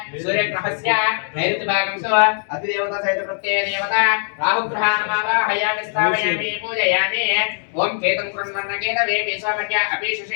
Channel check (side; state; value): right; silent; 65 dB below the other